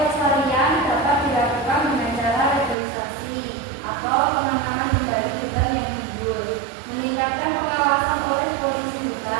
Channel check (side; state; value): left; drops out; at 2.8 s